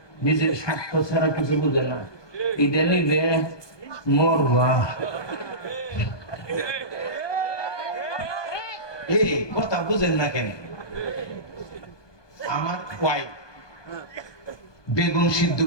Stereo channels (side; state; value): right; late; 1.2 ms